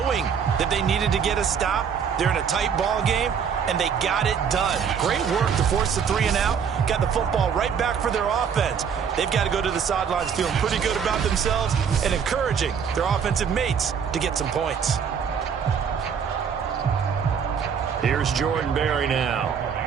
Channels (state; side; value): quieter; left; 7.1 dB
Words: that they needed to get a stop. They're in a tight ball game, and they got it done. Great work to force the 3 and out. Got the football right back for their offense. They've got to go to the sidelines feeling pretty good about themselves and encouraging their offensive mates to get some points. Here's Jordan Berry now,